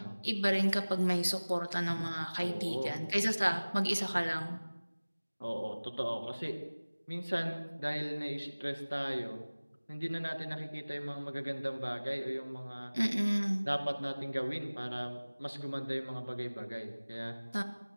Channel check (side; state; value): both; inverted; correlation -1.00